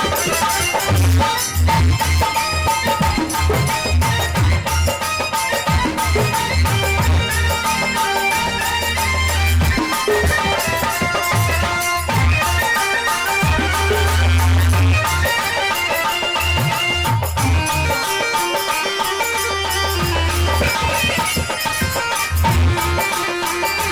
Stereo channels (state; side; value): identical; both; correlation 1.00